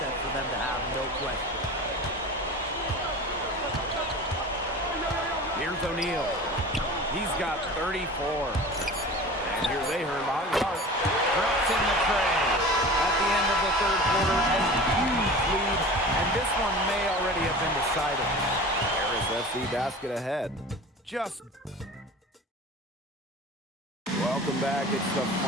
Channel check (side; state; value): both; normal; correlation 0.37